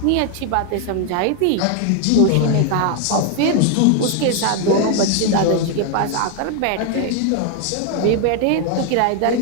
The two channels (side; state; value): both; different; correlation 0.00